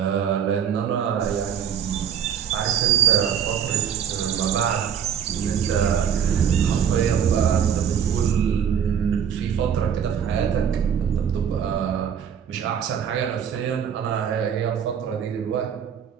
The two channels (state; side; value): quieter; left; 8.2 dB